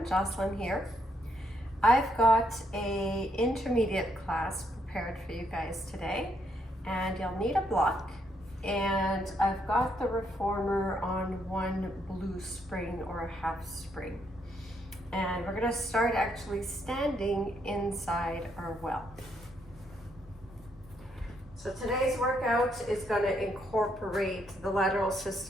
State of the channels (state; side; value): normal; both; correlation 0.74